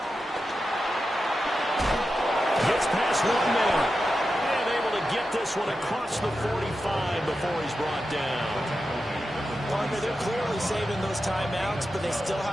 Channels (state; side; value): normal; both; correlation 0.90